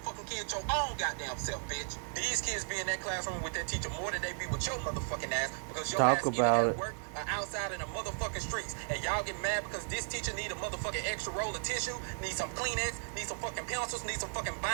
kid your own goddamn self, bitch. These kids be in that classroom with that teacher more than they be with your motherfucking ass, because your Talk ass either about at it. work or outside in the motherfucking streets. And y'all get mad because this teacher need a motherfucking extra roll of tissue, need some Kleenex, need some fucking pencils, need some fucking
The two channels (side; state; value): left; silent; 54 dB below the other